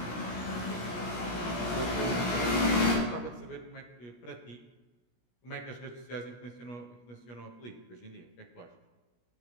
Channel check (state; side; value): late; right; 17 ms